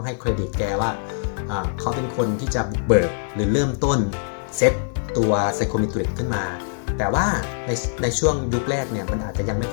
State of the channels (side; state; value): right; silent; digital silence